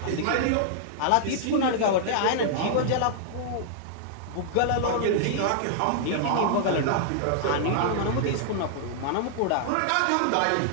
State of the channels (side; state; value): both; different; correlation -0.01